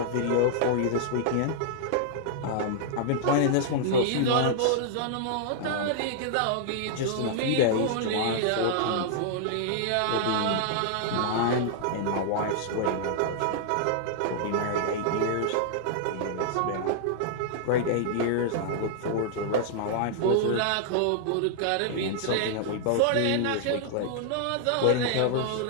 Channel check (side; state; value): both; different; correlation -0.01